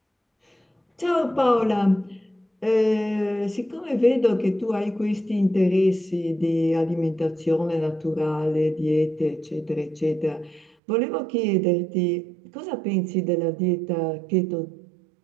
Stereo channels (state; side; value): drops out; left; at 10.8 s